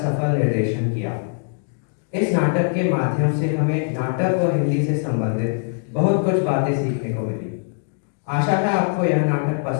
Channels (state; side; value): silent; right; 64 dB below the other